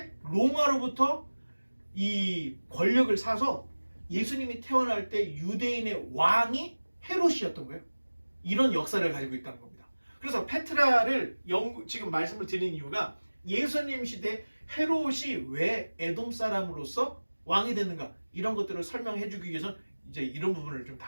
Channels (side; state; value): both; inverted; correlation -1.00